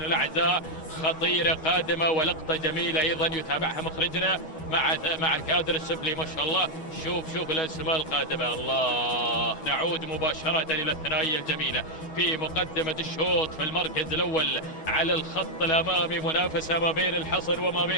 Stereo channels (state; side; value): late; right; 6.4 ms